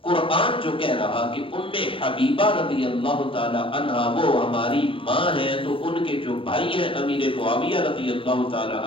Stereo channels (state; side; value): late; right; 0.26 ms